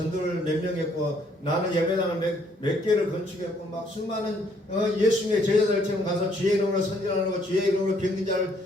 몇 명 했고 나는 예배당을 몇 개를 건축했고 막 수많은 예수님의 제자들처럼 가서 주의 이름으로 선전하고 주의 이름으로 병든 자를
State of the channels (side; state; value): both; normal; correlation 0.67